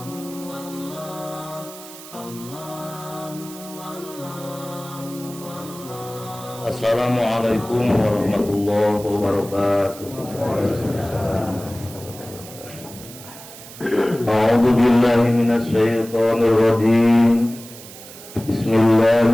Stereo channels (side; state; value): right; noise; hiss, 16 dB below the sound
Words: warahmatullahi wabarakatuh. A'udzu billahi minasy syaithanir rajim.